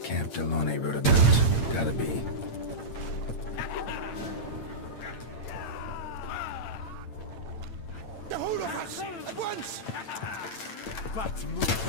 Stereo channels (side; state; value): right; late; 8.9 ms